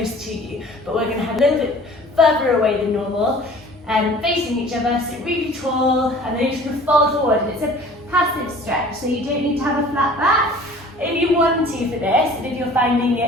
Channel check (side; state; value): both; normal; correlation 0.47